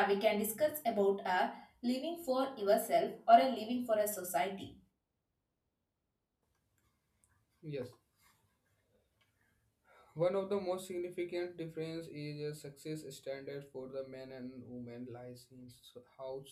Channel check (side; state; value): both; identical; correlation 1.00